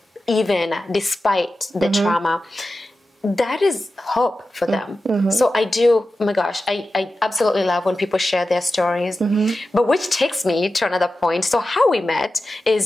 even despite the trauma, that is hope for them. So I do, oh my gosh, I absolutely love when people share their stories. But which takes me to another point. So how we met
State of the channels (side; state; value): both; normal; correlation 0.93